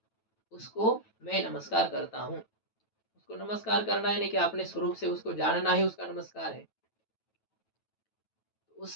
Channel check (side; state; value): right; late; 9.1 ms